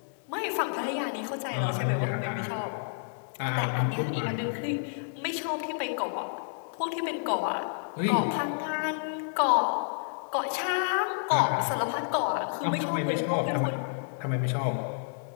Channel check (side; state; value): right; silent; digital silence